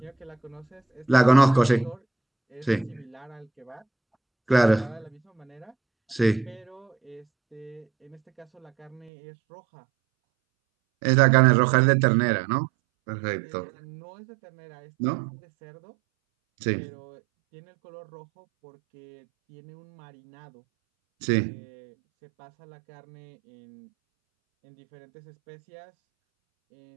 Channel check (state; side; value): drops out; left; at 9.1 s